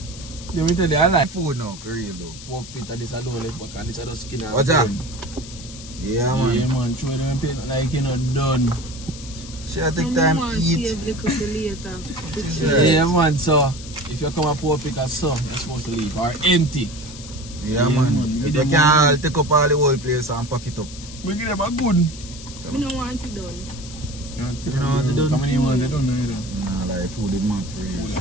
Let me tell you, I like Food now, for real though. pork pit and this I don't left back and this I just skin and What's that? bone. Yeah man. Yeah man, show them pain like you know done. Should take time to eat. Save little for later. Right. Yeah man, so if you come a pork pick as some, you're supposed to leave or empty. Yeah, Yeah, man. man. If Give you them can one. take up all the whole place and pack it up. We give them a good. We don't want it done. You know what they done? How many want they don't know either. Nah, like food is man for real.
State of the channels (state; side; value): noise; left; hiss, 15 dB below the sound